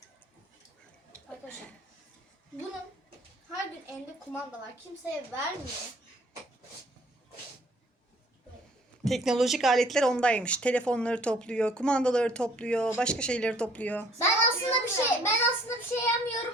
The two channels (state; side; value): normal; both; correlation 0.58